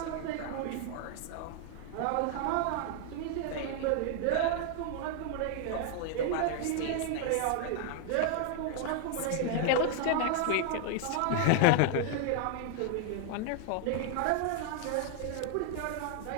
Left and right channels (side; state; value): both; different; correlation 0.00